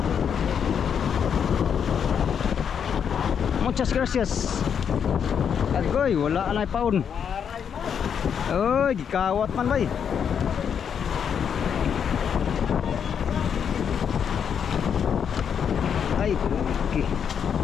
Muchas gracias. Agoy, wala na paun. Uy, gikawat man bay. Ay, okay.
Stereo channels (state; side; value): quieter; right; 7.6 dB